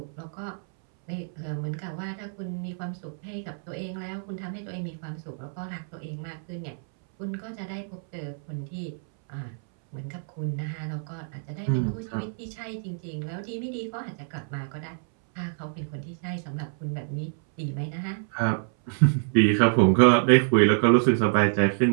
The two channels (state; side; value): silent; left; 60 dB below the other